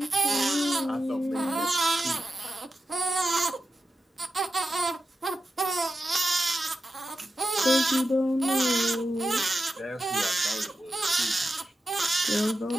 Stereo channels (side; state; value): both; normal; correlation 0.90